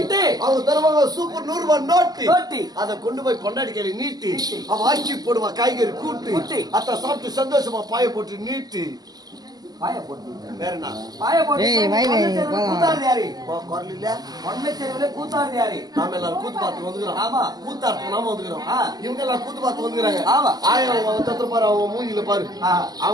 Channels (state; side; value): late; left; 0.19 ms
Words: அவங்க தருவாங்க சூப்பர் 100 ரூபாய் நோட்டு. அதை கொண்டு போய் பொண்டாடி கையில நீட்டி அவன் ஆக்கி போடுவா காய்கறி கூட்டு. அத்த சாப்பிட்டு சந்தோஷமா பாய போட்டு நீட்டு பாய போட்டு வேற என்ன பாய போட்டு கூத்தாடுது யாரு குரல் இல்ல ஒன்மை தெருவுல கூத்தாடுது யாரு? நாம எல்லாரும் கூத்து பார்த்து வந்துக்கிறோம். ஆமா, கூத்தாடுத்து நாம வந்துக்கிறோம். இவங்க எல்லாம் கூத்து பார்த்து வந்துக்கிறாங்க. ஆமா, ஆயிரம் பாரு அவங்க மூஞ்சில பாரு